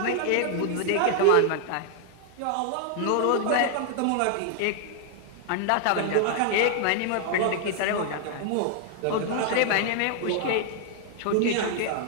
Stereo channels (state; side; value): different; both; correlation 0.00